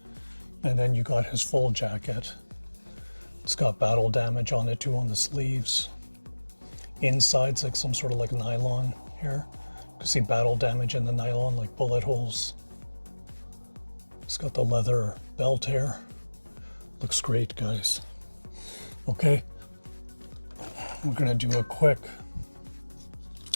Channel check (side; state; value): both; inverted; correlation -1.00